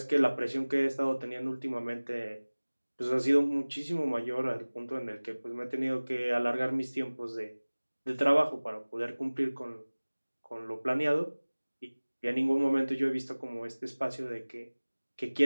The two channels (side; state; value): both; inverted; correlation -1.00